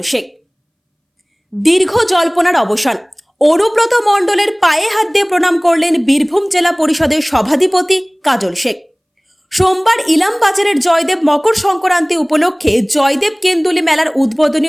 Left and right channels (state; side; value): identical; both; correlation 1.00